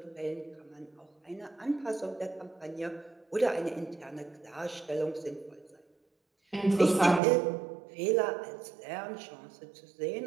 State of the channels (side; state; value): left; drops out; at 7.2 s